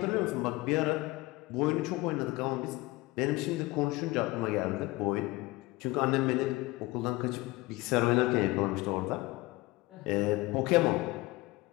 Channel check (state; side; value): quieter; right; 20.9 dB